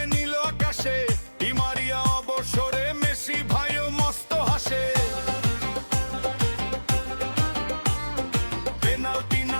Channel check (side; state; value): both; inverted; correlation -1.00